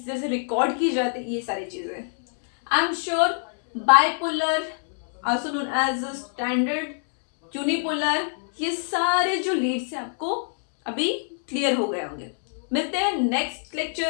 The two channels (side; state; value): right; silent; 62 dB below the other